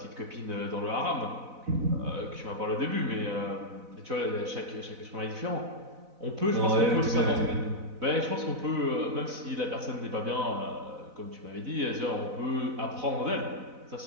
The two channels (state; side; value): late; left; 4.0 ms